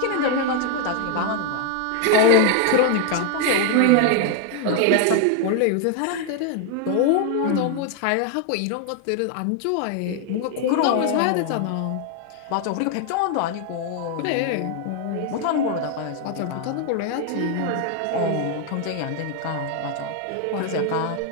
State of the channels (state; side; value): different; both; correlation 0.00